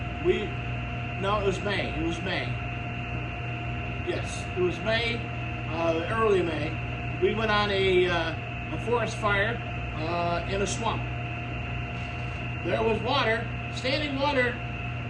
No, it was May. It was May. Yes, it was May, early May. We went on a forest fire in a swamp. There was water, standing water,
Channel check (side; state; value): both; identical; correlation 1.00